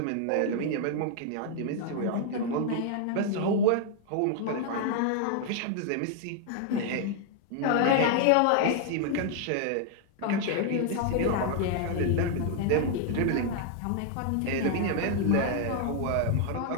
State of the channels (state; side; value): different; both; correlation 0.00